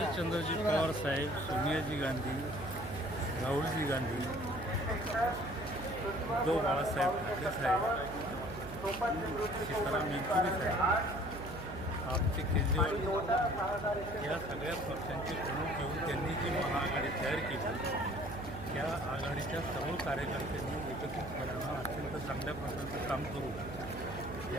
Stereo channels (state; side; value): noise; right; hum, 10 dB below the sound